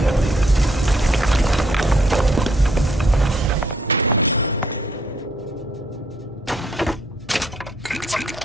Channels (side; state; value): both; normal; correlation 0.68